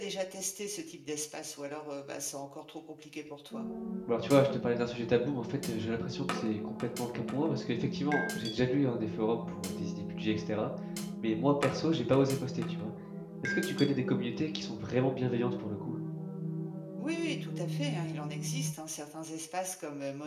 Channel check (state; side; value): identical; both; correlation 1.00